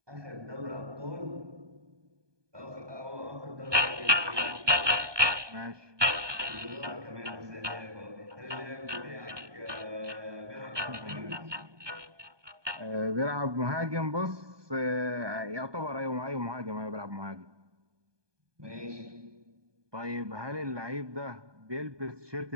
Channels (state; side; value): late; left; 1.2 ms